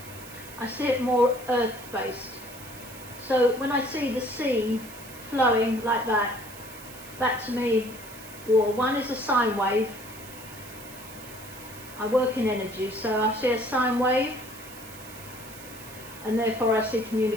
I see it more earth-based. So when I see the sea flowing like that, that to me, well, one is a sine wave. I work in energy, so I see a sine wave, and therefore I see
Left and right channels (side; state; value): right; noise; hiss, 17 dB below the sound